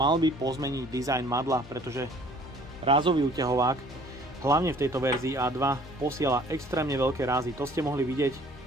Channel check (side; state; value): both; normal; correlation 0.54